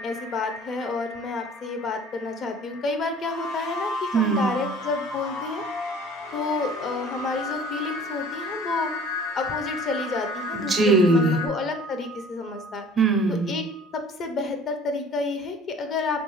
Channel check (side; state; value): both; normal; correlation 0.48